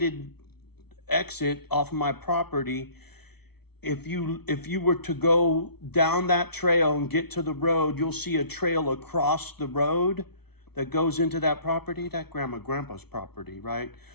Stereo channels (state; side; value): late; right; 0.98 ms